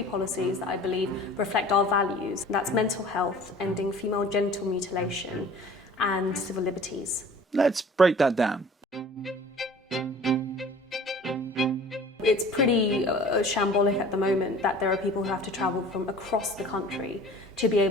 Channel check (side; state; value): both; normal; correlation 0.45